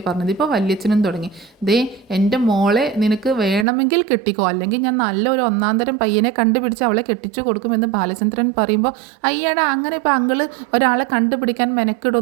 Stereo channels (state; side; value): drops out; left; at 3.7 s